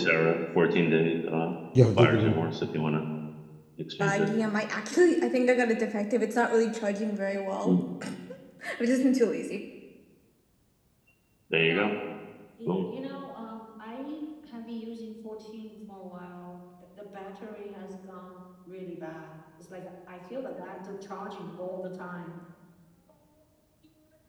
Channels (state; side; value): identical; both; correlation 1.00